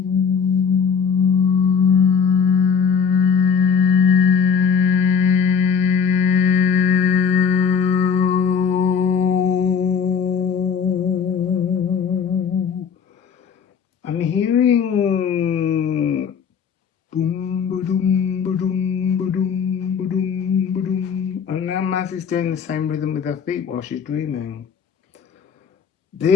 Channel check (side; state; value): right; quieter; 6.6 dB